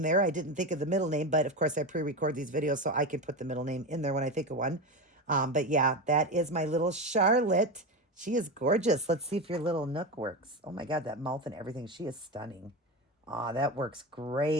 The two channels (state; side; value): normal; both; correlation 0.19